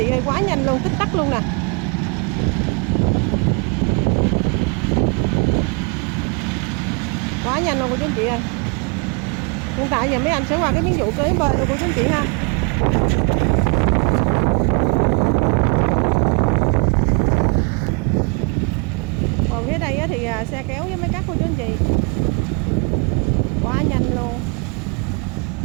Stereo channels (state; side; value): quieter; left; 32.8 dB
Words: ơi, quá nhanh luôn, tích tắc luôn nè. Quá nhanh luôn của chú anh chị ơi. Hiện tại giờ mấy anh sẽ qua cái miếng vụ kế bên của chú anh chị ha. Còn phía đây thì xe kéo với mấy cắt của chú anh chị. Quá nhanh luôn.